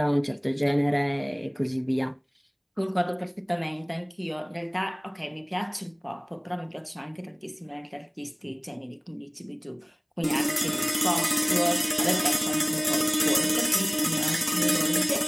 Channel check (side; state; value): both; identical; correlation 1.00